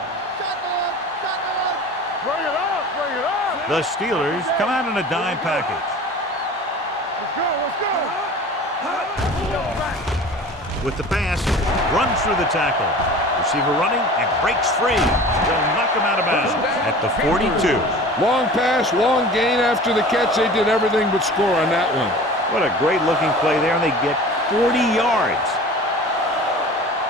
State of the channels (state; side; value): normal; both; correlation 0.40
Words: Bring it up, bring it up. The Steelers come out in a dime package. Let's go, let's go. With the pass, runs through the tackle. Receiver running and breaks free. They'll knock him out of bounds at the 42. Long pass, long gain after the catch. They did everything but score on that one. What a great looking play there, and they get 40 yards.